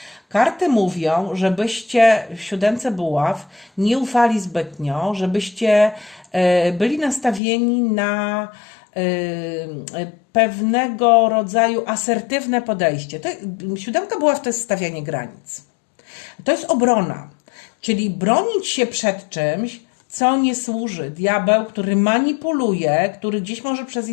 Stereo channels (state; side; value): drops out; right; at 7.4 s